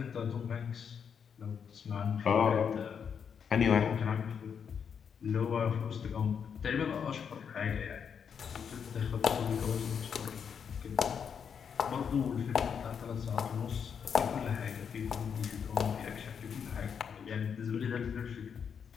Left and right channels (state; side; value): quieter; right; 7.1 dB